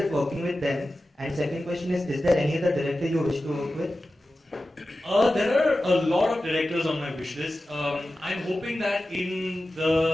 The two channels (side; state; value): both; normal; correlation 0.94